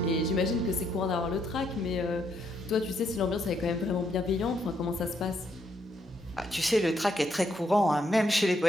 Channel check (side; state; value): both; normal; correlation 0.74